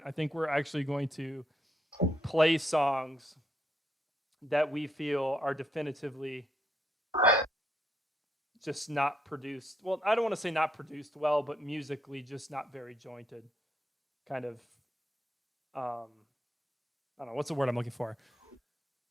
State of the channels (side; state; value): both; normal; correlation 0.77